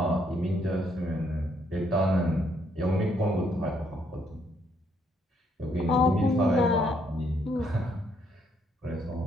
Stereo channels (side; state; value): both; normal; correlation 0.71